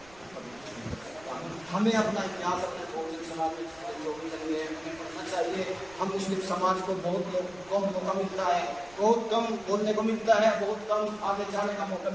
हमें अपना इतिहास अपने बहुजन समाज में पढ़ना चाहिए। हम मुस्लिम समाज को बहुत कम मौका मिलता है, बहुत कम बोलने को मिलता है, बहुत कम आगे जाने का मौका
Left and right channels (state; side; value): noise; right; rumble, 24 dB below the sound